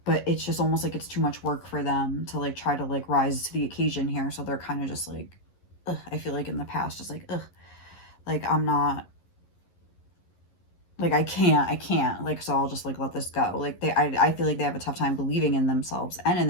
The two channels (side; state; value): right; late; 11 ms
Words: it's just almost like it's too much work for them to like try to like rise to the occasion here. So they're kind of just like, ugh, I feel like in the past, just like, ugh, like I'm not, like I can't, like, so I'll just like let this go. Like I feel like they have a tough time believing in themselves and in